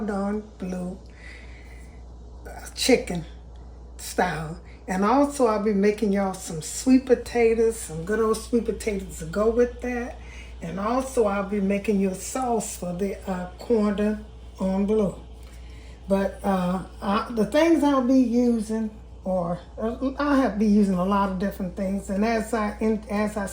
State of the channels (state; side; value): identical; both; correlation 1.00